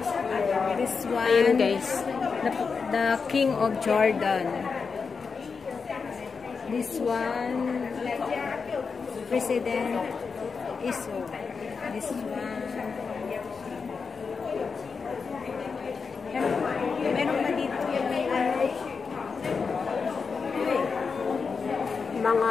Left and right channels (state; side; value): quieter; right; 5.2 dB